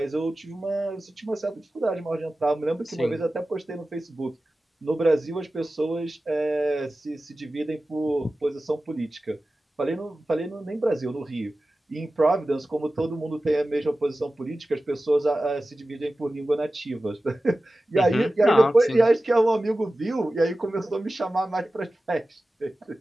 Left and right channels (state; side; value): normal; both; correlation 0.95